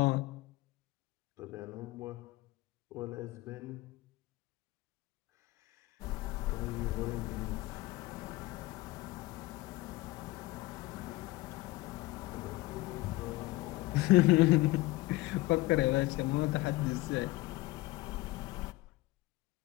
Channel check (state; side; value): quieter; right; 19.6 dB